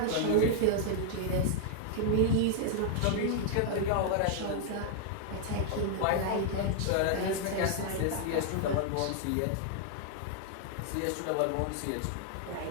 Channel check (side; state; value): both; different; correlation 0.00